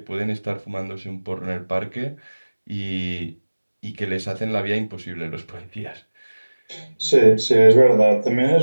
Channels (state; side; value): inverted; both; correlation -1.00